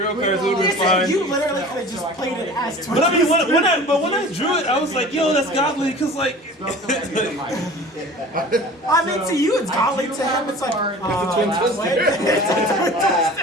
cards. It would have been fine. You literally could have just played it as But I mean, when I drew it, I was like, yo, that's godly, cause like. I mean, to you it's godly. To him it's like,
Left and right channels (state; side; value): normal; both; correlation 0.41